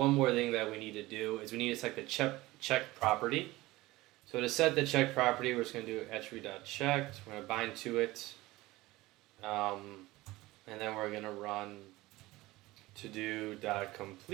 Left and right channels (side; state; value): left; quieter; 19.1 dB